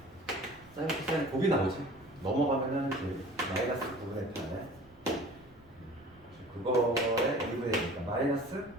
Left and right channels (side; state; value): right; noise; rumble, 28 dB below the sound